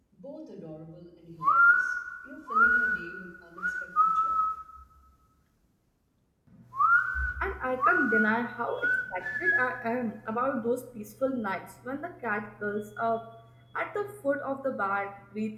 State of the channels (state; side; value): identical; both; correlation 1.00